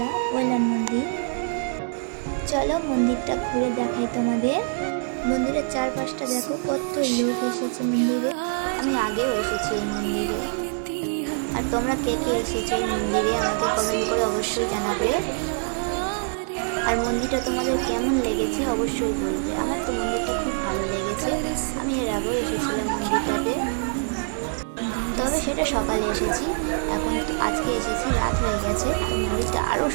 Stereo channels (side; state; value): left; silent; 62 dB below the other